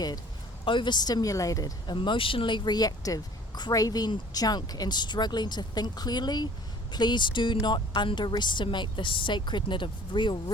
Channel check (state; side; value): normal; both; correlation 0.50